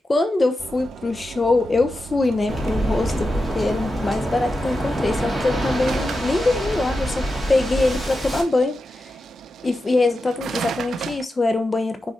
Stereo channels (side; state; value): both; normal; correlation 0.90